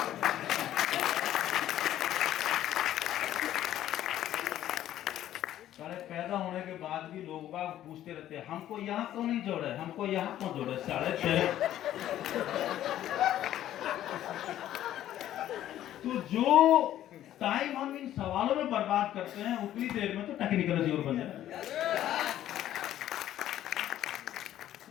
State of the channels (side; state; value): right; quieter; 12.4 dB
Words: सारे पैदा होने के बाद भी लोग बाग पूछते रहते हैं, हमको यहाँ क्यों नहीं जोड़े, हमको यहाँ क्यों जोड़े। साढ़े तो जो टाइम हम इन सवालों में बर्बाद करते हैं, उतनी देर में तो टेक्निकल जीवन बन जाए।